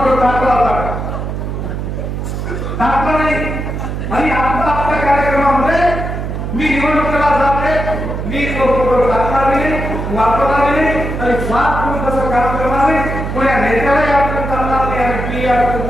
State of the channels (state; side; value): noise; right; hum, 4 dB below the sound